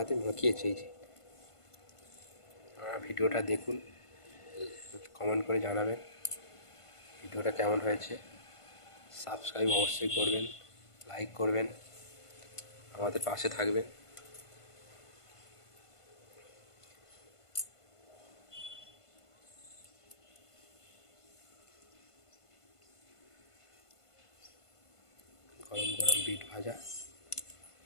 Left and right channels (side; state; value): right; late; 1.5 ms